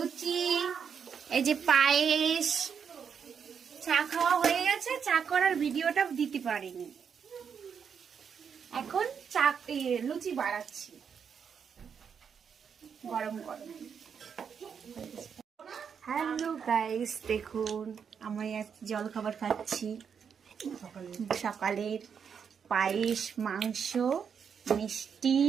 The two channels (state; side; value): quieter; left; 7.0 dB